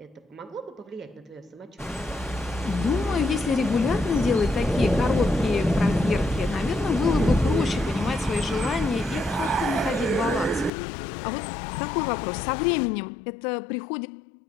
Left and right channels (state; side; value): drops out; right; at 10.7 s